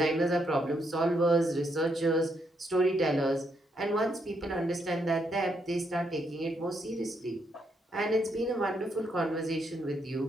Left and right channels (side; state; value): both; normal; correlation 0.77